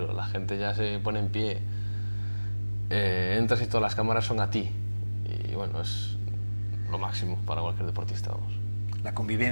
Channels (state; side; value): inverted; both; correlation -1.00